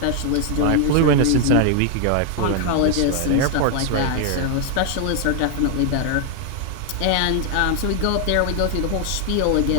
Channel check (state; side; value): different; both; correlation 0.00